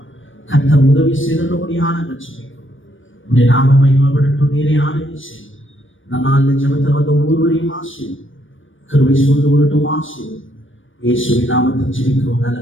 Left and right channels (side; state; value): right; late; 0.57 ms